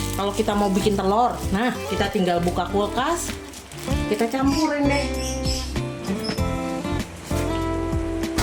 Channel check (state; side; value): identical; both; correlation 1.00